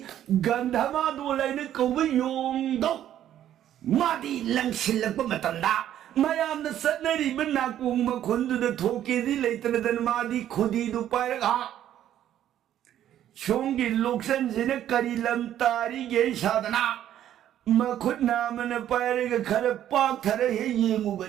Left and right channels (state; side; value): quieter; left; 11.3 dB